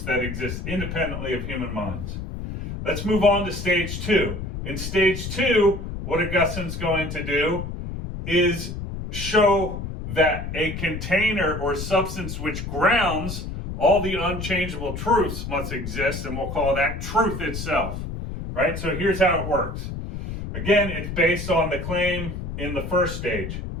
that exist independently of human minds. Let's move on to stage 2. In stage 2, what Augustine's going to do is show that a container or substance which grounds all the unchangeable truths must exist, and we'll call that truth itself, right? So here's how it works. Again, it's based on the claim in the first stage.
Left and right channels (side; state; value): left; noise; rumble, 6 dB below the sound